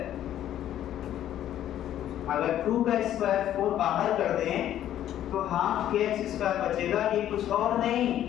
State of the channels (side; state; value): right; quieter; 11.7 dB